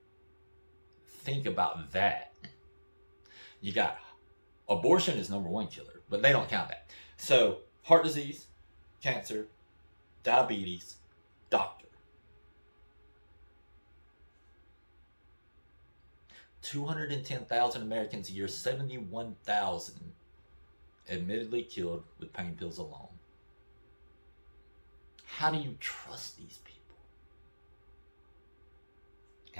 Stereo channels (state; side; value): inverted; both; correlation -1.00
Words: Think about that. You got abortion is number 1 killer, but they don't count that. So heart disease, cancer, diabetes, doctor. 210,000 Americans a year, 71,000 admittedly killed with pain pills alone. How do you trust these people?